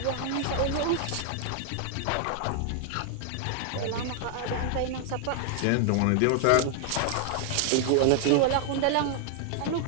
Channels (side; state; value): both; different; correlation 0.00